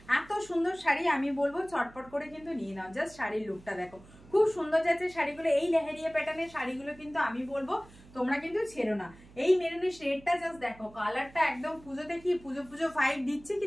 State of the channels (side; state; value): right; noise; hum, 22 dB below the sound